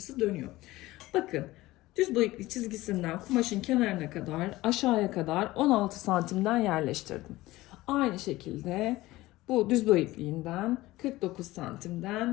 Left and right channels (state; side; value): quieter; right; 18.1 dB